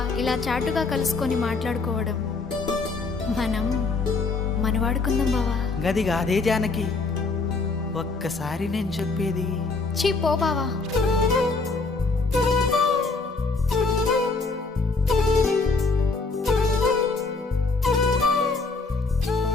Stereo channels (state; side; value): quieter; right; 3.9 dB